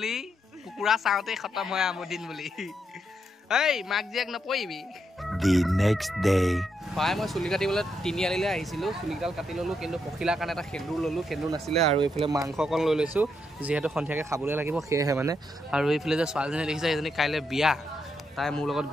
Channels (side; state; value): both; normal; correlation 0.80